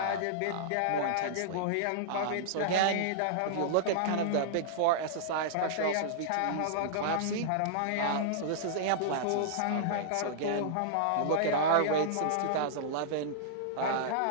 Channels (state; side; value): different; both; correlation -0.02